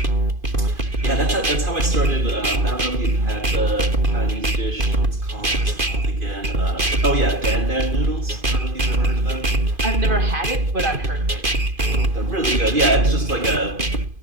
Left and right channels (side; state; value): left; late; 2.5 ms